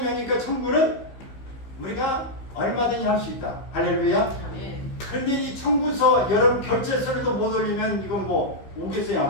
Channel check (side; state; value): right; late; 15 ms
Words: 하니까 청구는 우리가 얼마든지 할 수 있다. 할렐루야. 그런데 이 청구서 여러분 결제서를 못 올리면 이거 뭐 오겠어요